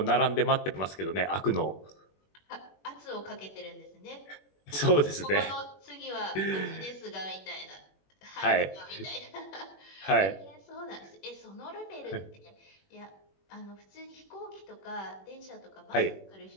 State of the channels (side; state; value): right; late; 21 ms